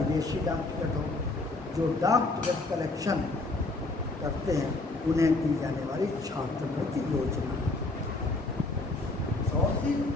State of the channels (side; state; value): right; quieter; 3.1 dB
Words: डाक टिकट हो, जो डाक टिकट कलेक्शन करते हैं उन्हें दी जाने वाली छात्रवृत्ति योजना।